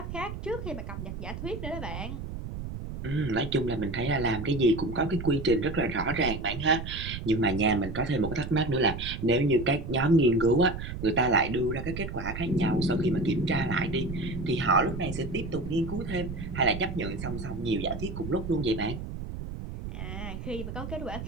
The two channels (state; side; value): noise; right; rumble, 8 dB below the sound